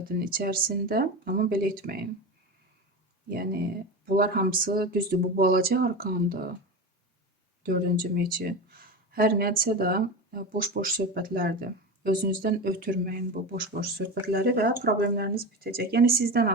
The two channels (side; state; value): both; normal; correlation 0.24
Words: içərisində. Amma belə etməyin. Yəni, bunlar hamısı düzdür, bu balaca arkandır. 4-cü meçi. Hər nədirsə də boş-boş söhbətlərdir. Özünüzdən ötürməyin bu boş-boş söhbətləri və problemləriniz bitəcək. Yəni, sizdən